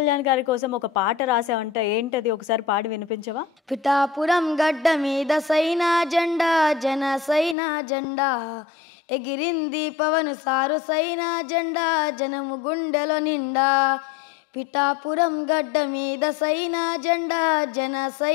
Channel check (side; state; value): right; drops out; at 7.6 s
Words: గారి కోసం ఒక పాట రాసావంట, ఏంటది? ఒకసారి పాడి వినిపించవా? పిఠాపురం గడ్డ మీద సైనా జెండా, జన సైనా జెండా ఎగిరింది పవన్ సారు సైనా జెండా, జనము గుండెలో నిండా. పిఠాపురం గడ్డ మీద సైనా జెండా, జన